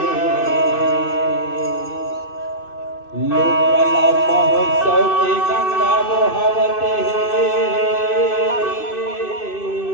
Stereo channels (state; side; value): late; right; 2.6 ms